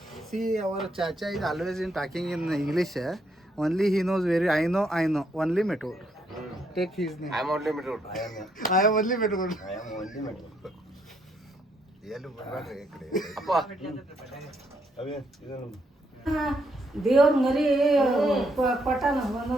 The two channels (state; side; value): normal; both; correlation 0.74